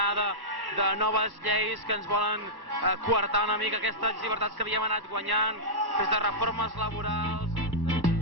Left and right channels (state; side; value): late; left; 1.2 ms